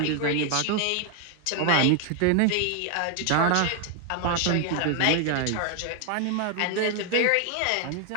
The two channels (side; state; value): both; different; correlation 0.00